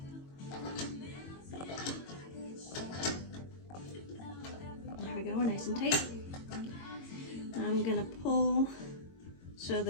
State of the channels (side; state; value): right; late; 22 ms